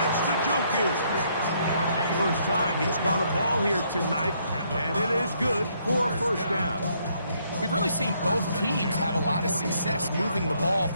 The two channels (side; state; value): both; inverted; correlation -0.70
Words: That's Gggggggggg. First time he's caught a ball here tonight, and it is good for a first down. We've really seen both teams have a lot of success moving the ball